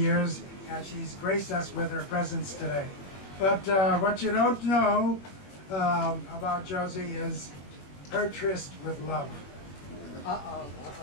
and she's graced us with her presence today. But what you don't know about Josie is her tryst with love.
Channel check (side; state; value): right; late; 21 ms